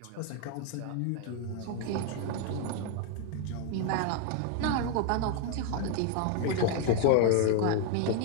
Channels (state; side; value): different; both; correlation 0.00